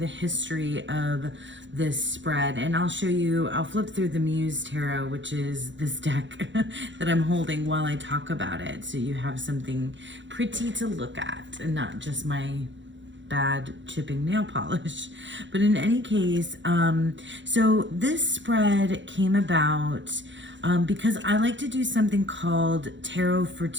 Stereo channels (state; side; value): late; left; 0.54 ms